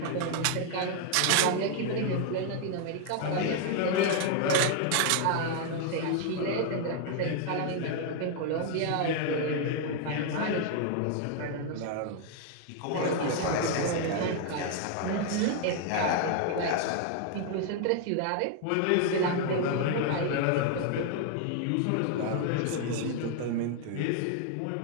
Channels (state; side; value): different; both; correlation 0.00